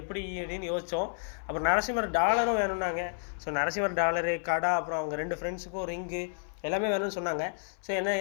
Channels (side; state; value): right; silent; 56 dB below the other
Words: எப்படி அப்படின்னு யோசித்தோம். அப்புறம் நரசிம்மர் டாலரும் வேணும்னாங்க. ஸோ நரசிம்மர் டாலரு கடை, அப்புறம் அவங்க 2 ஃப்ரெண்ட்ஸுக்கும் ரிங்கு எல்லாமே வேணும்னு சொன்னாங்க. ஸோ